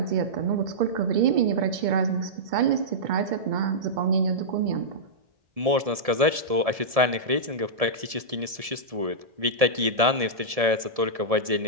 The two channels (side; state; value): left; late; 1.7 ms